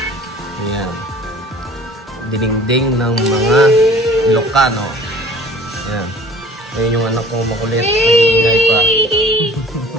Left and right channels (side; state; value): both; normal; correlation 0.49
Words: Ayan. Dininding ng mga Ilocano. Ayan. Ayan yung anak kong makulit. Nag-iingay pa.